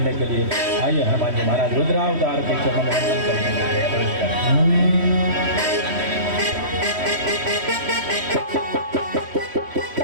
के लिए। आइए हनुमान जी महाराज रुद्रावतार के चरणों में वंदन करने के लिए प्रवेश करें।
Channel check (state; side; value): late; left; 3.1 ms